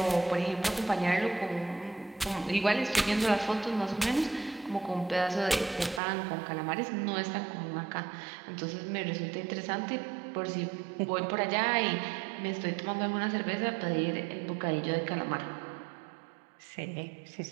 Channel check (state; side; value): drops out; left; at 6.0 s